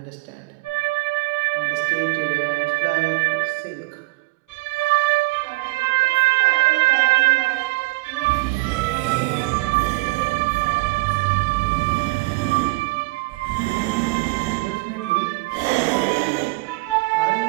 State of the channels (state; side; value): quieter; left; 24.2 dB